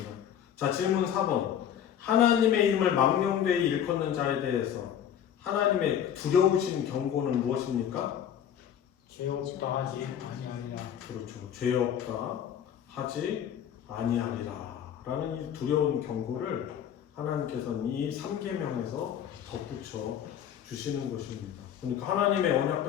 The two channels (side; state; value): right; quieter; 9.4 dB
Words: 자, 질문 4번. 하나님의 이름을 망령되이 일컫는 자에 대해서 하나님의 두려우신 경고는 무엇입니까? 죄 없다 하지 아니하리라. 그렇죠. 죄 없다 하지 아니하리라 라는 이 두려운 경고를 하나님께서는 이 3계명에서 덧붙여 주시는 것입니다. 그러니까 하나님의 언약